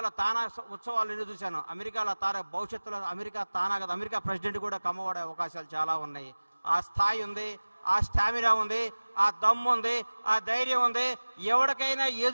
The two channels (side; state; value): both; inverted; correlation -1.00